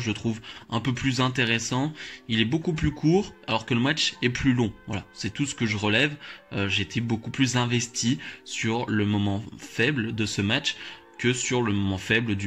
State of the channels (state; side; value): identical; both; correlation 1.00